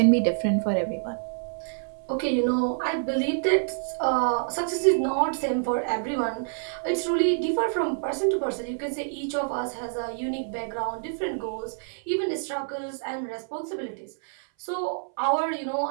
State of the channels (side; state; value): left; silent; 60 dB below the other